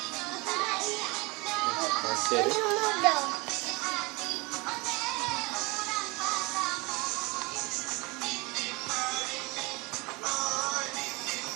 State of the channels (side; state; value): left; quieter; 25.9 dB